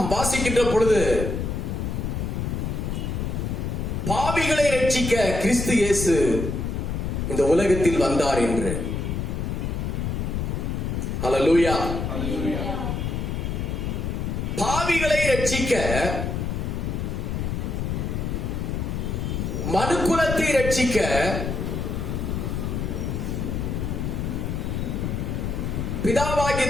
வாசிக்கின்ற பொழுது பாவிகளை ரட்சிக்க கிறிஸ்து இயேசு இந்த உலகத்தில் வந்தார் என்று. ஹல்லேலூயா. பாவிகளை ரட்சிக்க, மனுக்குலத்தை ரட்சிக்க பிதாவாகிய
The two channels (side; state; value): left; noise; rumble, 2 dB below the sound